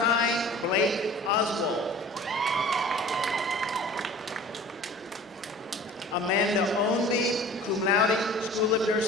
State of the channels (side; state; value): both; normal; correlation 0.44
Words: Blake Oswald. Amanda Ownby, cum laude, School of